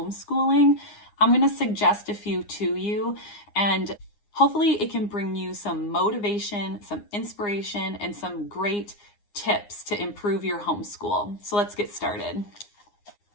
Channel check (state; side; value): late; right; 9.7 ms